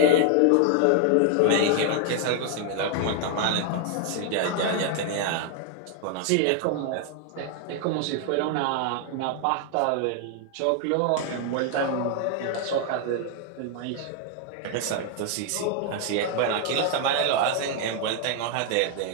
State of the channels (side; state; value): both; different; correlation 0.00